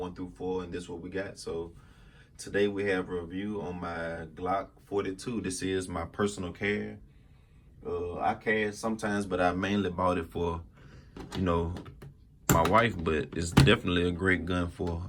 through 4, and this is what we got. So today we have a review on my Glock 42. This is my personal carry. I carry sometimes, but I mainly bought it for, you know, my wife, but it's definitely a great gun for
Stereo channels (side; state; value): both; identical; correlation 1.00